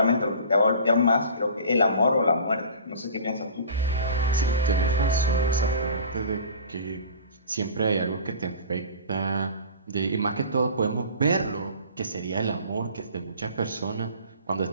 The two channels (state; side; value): inverted; both; correlation -0.41